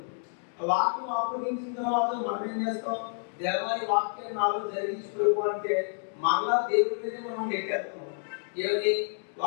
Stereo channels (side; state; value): right; silent; 58 dB below the other